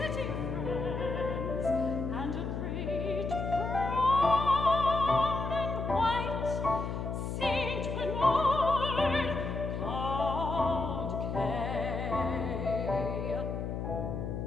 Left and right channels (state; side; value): noise; left; hum, 4 dB below the sound